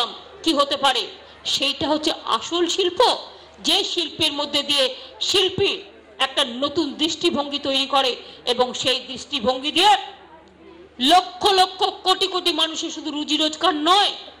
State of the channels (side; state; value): both; identical; correlation 1.00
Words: কি হতে পারে, সেইটা হচ্ছে আসল শিল্প। যে শিল্পের মধ্যে দিয়ে শিল্পী একটা নতুন দৃষ্টিভঙ্গি তৈরি করে এবং সেই দৃষ্টিভঙ্গি দিয়ে লক্ষ লক্ষ কোটি কোটি মানুষের শুধু রুজি রোজগার নয়,